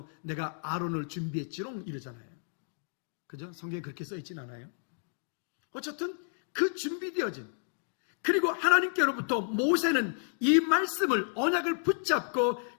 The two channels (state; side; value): silent; right; digital silence